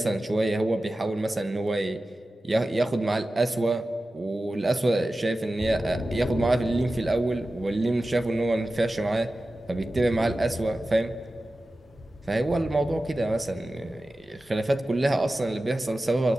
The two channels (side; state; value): both; normal; correlation 0.94